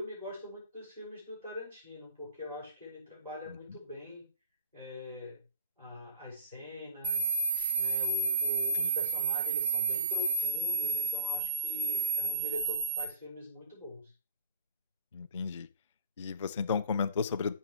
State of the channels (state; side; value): inverted; both; correlation -0.31